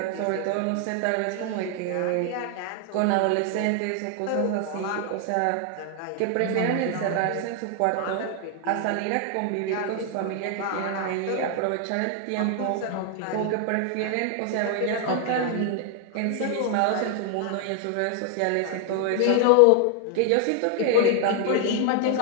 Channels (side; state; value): both; different; correlation 0.00